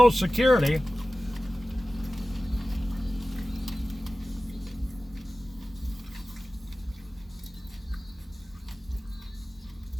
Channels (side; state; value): both; normal; correlation 0.96